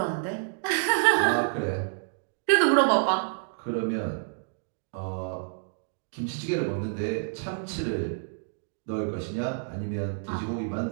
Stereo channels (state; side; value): silent; left; digital silence